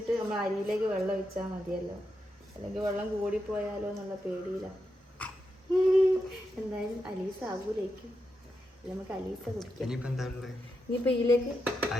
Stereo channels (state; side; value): normal; both; correlation 0.86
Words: നമ്മൾ അരിയിലേക്ക് വെള്ളം ഒഴിച്ചാൽ മതിയല്ലോ, അല്ലെങ്കിൽ വെള്ളം കൂടിപ്പോയാലോ എന്നുള്ള പേടിയില്ല. എന്തായാലും അലീസ് ആകൂലേക്കും. നമുക്ക് അലീസ കുടിക്കാം. ഇനിയിപ്പോ എന്താ ഉള്ളത്? ഇനിയിപ്പോ ഇതിലേക്ക്